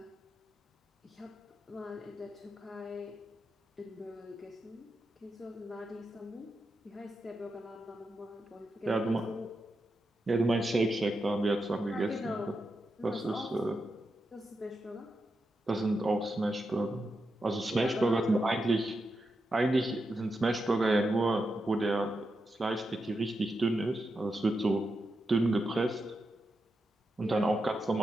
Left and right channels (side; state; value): both; normal; correlation 0.87